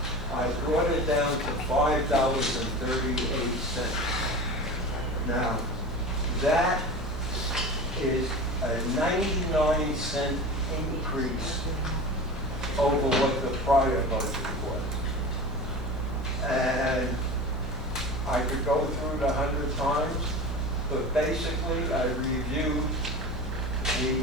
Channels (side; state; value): right; noise; hum, 5 dB below the sound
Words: I brought it down to $5.38. Now, that is a 99-cent increase over what the prior budget was. And I could go through it 100 times, but basically I reviewed the